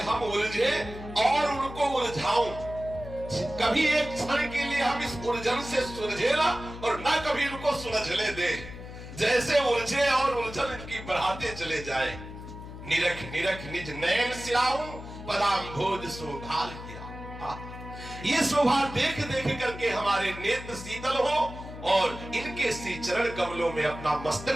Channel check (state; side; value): noise; left; hum, 12 dB below the sound